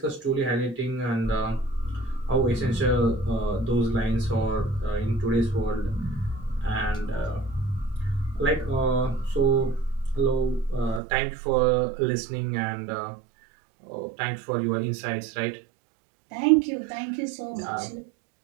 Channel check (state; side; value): drops out; left; at 11.0 s